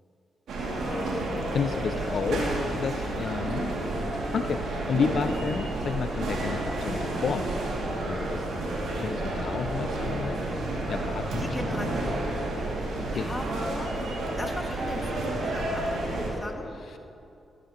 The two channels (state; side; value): normal; both; correlation 0.76